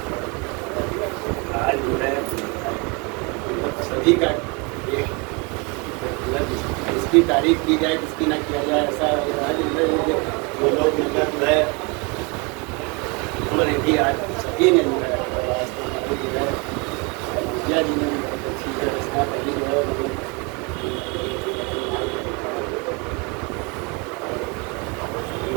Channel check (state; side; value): quieter; left; 29.2 dB